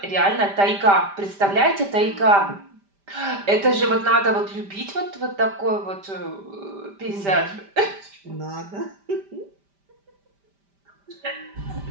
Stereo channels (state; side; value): late; left; 5.1 ms